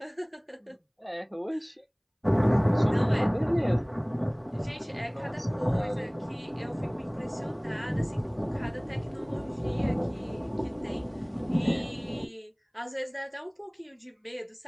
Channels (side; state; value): both; identical; correlation 1.00